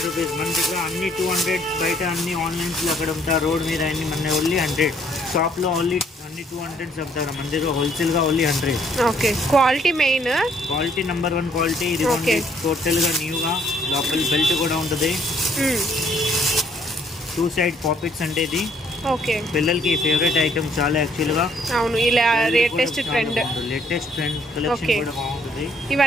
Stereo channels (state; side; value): normal; both; correlation 0.66